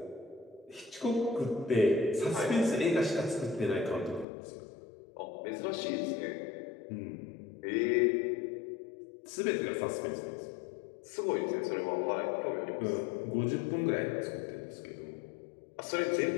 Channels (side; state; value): right; drops out; at 4.2 s